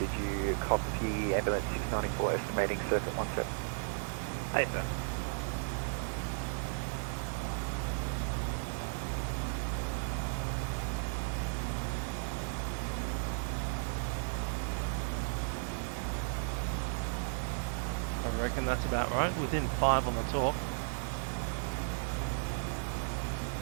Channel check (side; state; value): left; silent; digital silence